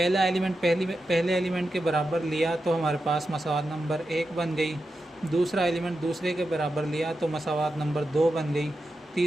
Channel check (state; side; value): normal; both; correlation 0.89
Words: एलिमेंट पहले एलिमेंट के बराबर लिया तो हमारे पास मसावात नंबर 1 बन गई। दूसरा एलिमेंट दूसरे के बराबर लिया तो मसावात नंबर 2 बन गई।